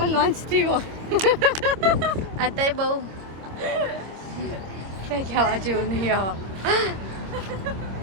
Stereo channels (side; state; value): left; late; 26 ms